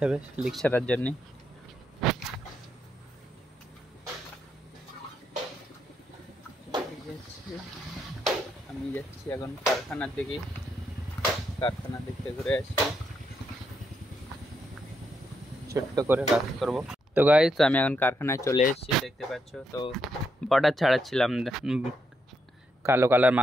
হবে লিক ছাড়ার জন্য। আমি যাচ্ছি এখন কারখানার দিকে। কারখানার দিকে ঘুরে আসি, ছোট্ট করে কাজ করব। তো গাইস আমি এখন কারখানায় চলে এসেছি, দেখতে পাচ্ছ। তো বর্ডার ছাড়াচ্ছিলাম, কালো কালার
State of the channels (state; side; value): normal; both; correlation 0.79